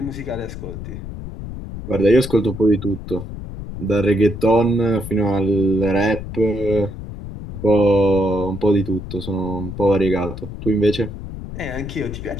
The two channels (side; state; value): left; noise; rumble, 9 dB below the sound